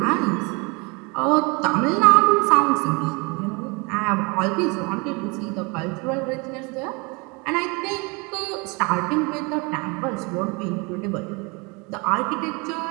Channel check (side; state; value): left; quieter; 28.9 dB